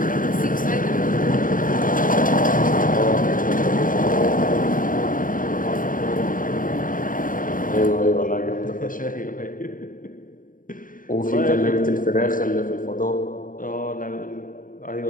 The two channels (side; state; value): right; late; 0.40 ms